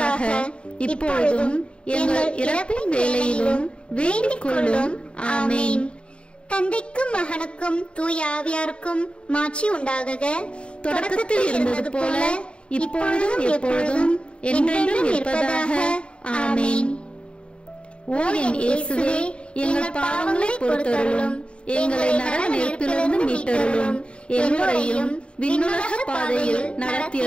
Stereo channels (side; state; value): right; late; 0.056 ms